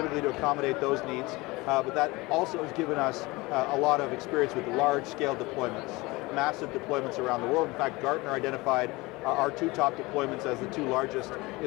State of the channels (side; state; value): right; quieter; 22.5 dB